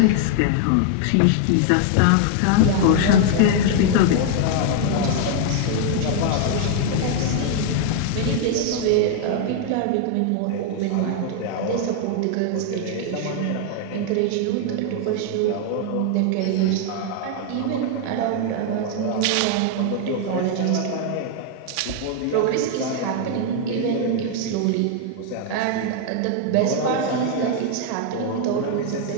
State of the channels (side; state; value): both; different; correlation 0.00